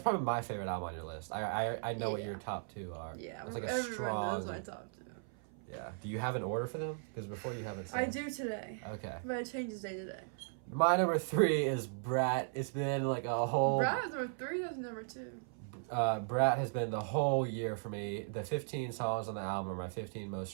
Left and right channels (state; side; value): silent; left; 53 dB below the other